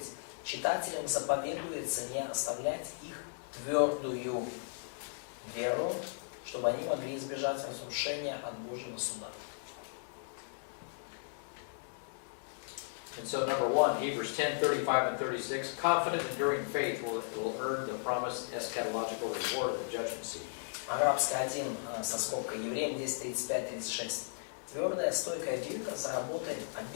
Читателям заповедуется не оставлять их твердую веру, чтобы они могли избежать разрушения от Божьего суда. And so number one, Hebrews 10:35 and 36, confident enduring faith will earn the promised eschatological reward of the judgment seat. Арабская 1 со скобкой. Евреям 10:35-36. Твердая, стойкая вера заработает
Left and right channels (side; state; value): right; silent; digital silence